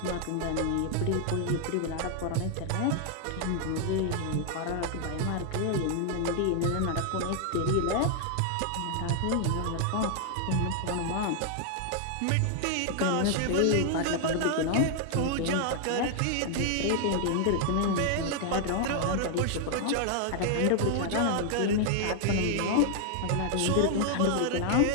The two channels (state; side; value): different; both; correlation 0.00